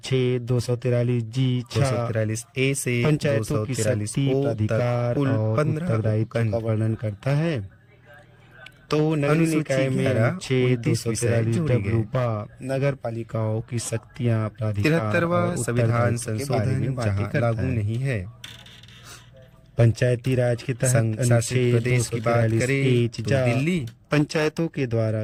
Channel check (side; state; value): both; identical; correlation 1.00